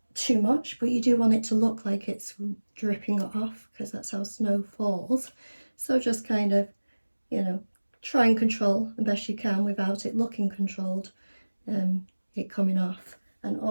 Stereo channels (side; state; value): both; inverted; correlation -1.00